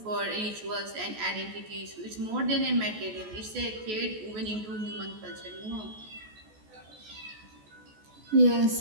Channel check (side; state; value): left; late; 14 ms